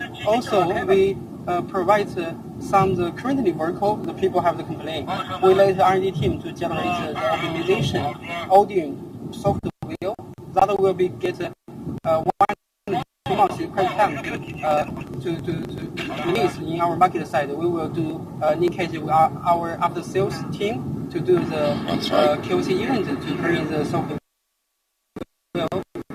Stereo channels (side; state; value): both; identical; correlation 1.00